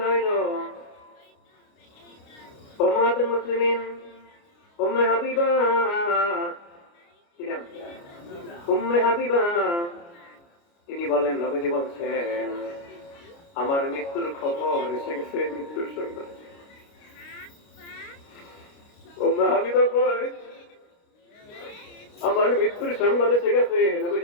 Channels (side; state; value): right; late; 29 ms